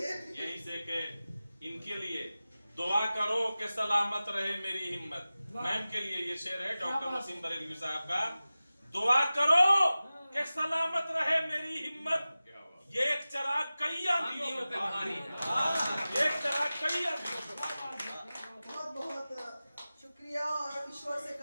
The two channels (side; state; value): both; inverted; correlation -0.96